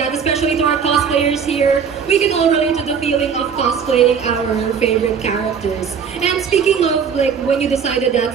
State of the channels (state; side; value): quieter; left; 6.8 dB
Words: especially to our cosplayers here. We can all relate to the feeling of cosplaying our favorite characters. And speaking of like when you decided that